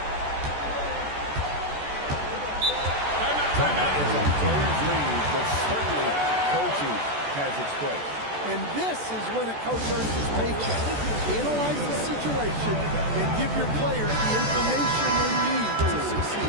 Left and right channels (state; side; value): late; left; 14 ms